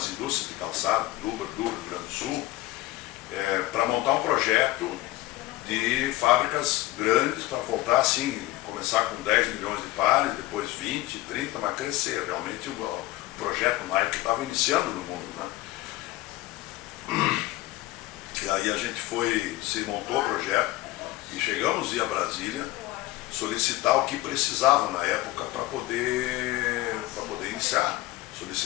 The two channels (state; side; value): quieter; right; 18.1 dB